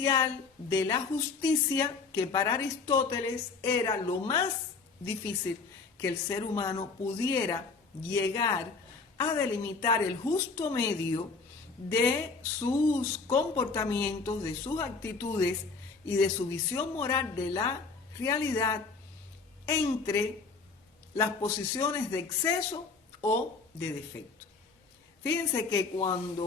de la justicia, que para Aristóteles era lo más difícil que el ser humano pudiera llegar a delimitar el justo medio de sus comportamientos, de sus actitudes y de su visión moral de la realidad entre las posiciones de exceso o de defecto. Fíjense que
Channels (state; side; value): quieter; right; 4.5 dB